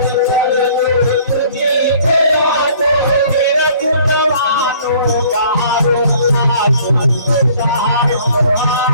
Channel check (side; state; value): both; inverted; correlation -0.55